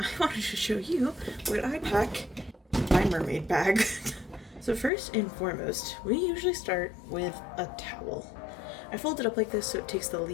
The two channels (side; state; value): right; drops out; at 4.9 s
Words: wanted to show you what I pack in my mermaid bag. So first and foremost, we usually start with a towel. I fold it up like this so it takes the